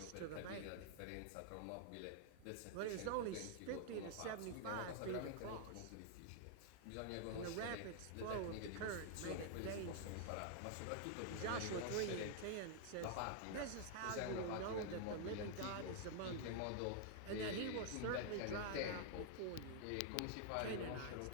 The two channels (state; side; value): different; both; correlation 0.00